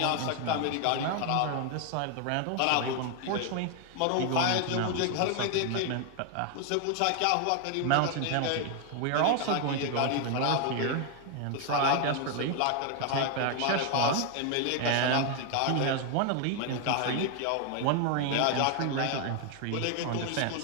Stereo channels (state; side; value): different; both; correlation 0.01